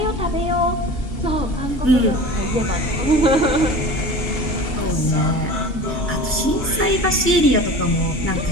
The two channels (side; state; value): both; normal; correlation 0.37